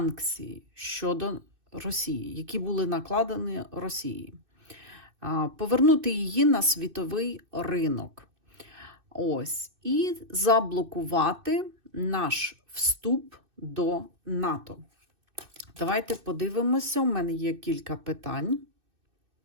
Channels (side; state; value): left; late; 2.6 ms